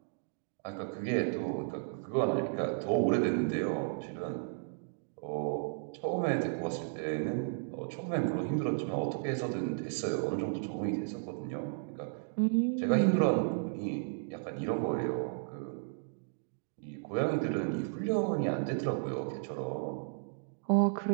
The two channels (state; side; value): silent; left; digital silence